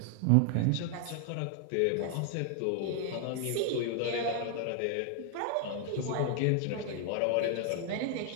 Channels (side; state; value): both; different; correlation 0.00